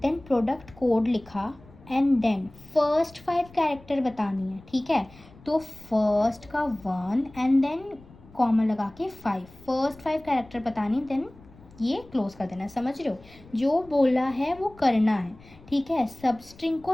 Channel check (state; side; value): noise; left; rumble, 23 dB below the sound